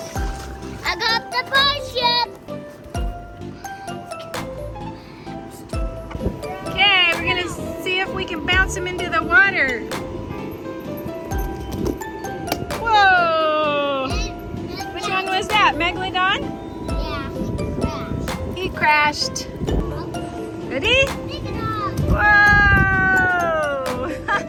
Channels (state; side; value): identical; both; correlation 1.00